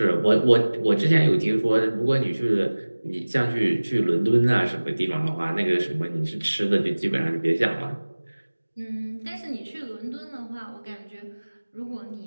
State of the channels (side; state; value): both; inverted; correlation -1.00